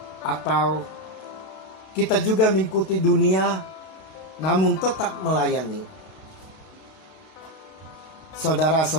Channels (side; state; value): right; late; 32 ms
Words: atau kita juga mengikuti dunia namun tetap melayani?